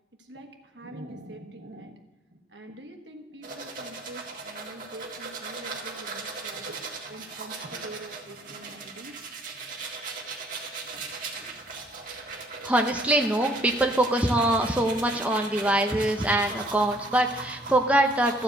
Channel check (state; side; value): normal; both; correlation 0.61